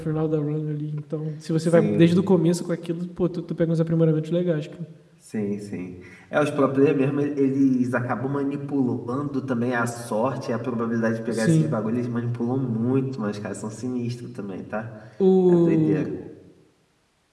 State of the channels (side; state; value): both; identical; correlation 1.00